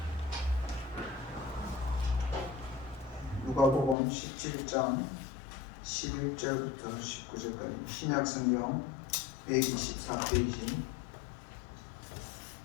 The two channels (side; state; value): right; drops out; at 4.0 s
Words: 누가복음 17장 11절부터 19절까지 신약성경 124페이지